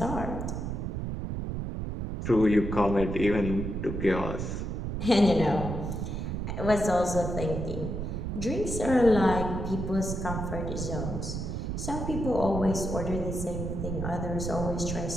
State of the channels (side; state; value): right; noise; rumble, 4 dB below the sound